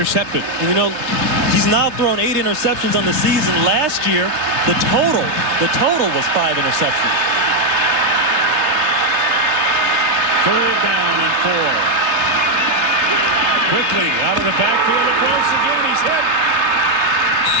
And you know, he's now thrown 8 interceptions on the season. Last year, the total was 5 interceptions. 3rd down and 4. Quickly out of the backfield, it goes again. He's hit.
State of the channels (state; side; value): late; left; 3.4 ms